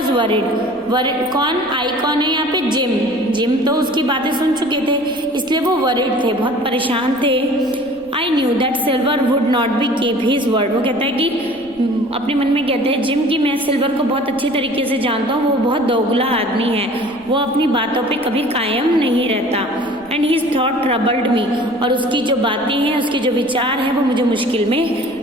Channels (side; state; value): right; noise; rumble, 27 dB below the sound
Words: वरिड, कौन, आई कौन है यहाँ पे, जिम तो उसकी बातें सुन चुके थे, इसलिए वो वरिड थे, बहुत परेशान थे। I knew that silver would not be keep his word. वो कहता है कि अपने मन में कहते हैं जिम की, मैं सिल्वर को बहुत अच्छी तरीके से जानता हूँ, वो बहुत दोगला आदमी है, वो अपनी बातों पे कभी कायम नहीं रहता। एंड हिज थॉट ट्रबल्ड मी, और उसकी जो बातें हैं, उसके जो विचार हैं, वो मुझे मुश्किल